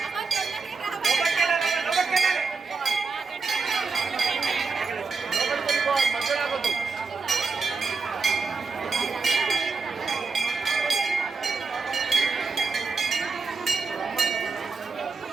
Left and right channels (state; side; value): quieter; left; 4.5 dB